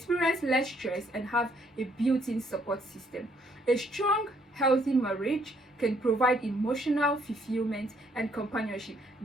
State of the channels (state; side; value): normal; both; correlation 0.68